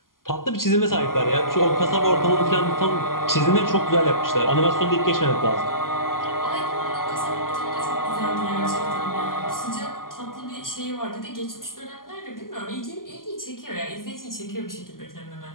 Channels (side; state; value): right; late; 0.91 ms